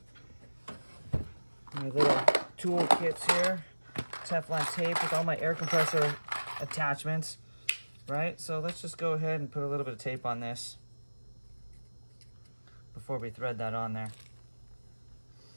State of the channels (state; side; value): inverted; both; correlation -1.00